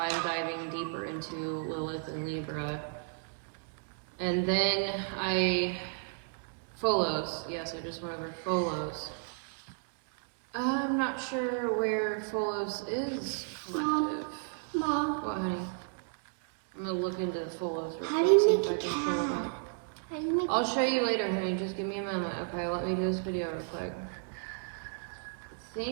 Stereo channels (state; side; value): silent; left; digital silence